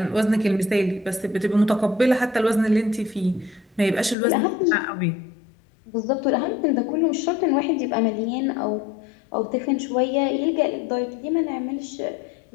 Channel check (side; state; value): right; drops out; at 4.2 s